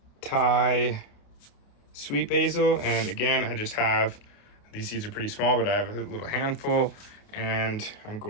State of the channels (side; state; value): right; late; 29 ms